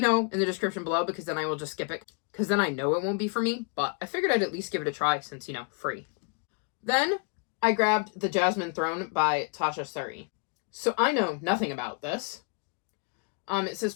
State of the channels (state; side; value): quieter; right; 35.0 dB